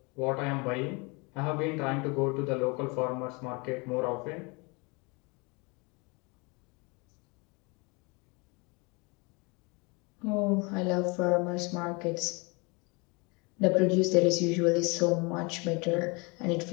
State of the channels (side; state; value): right; quieter; 29.0 dB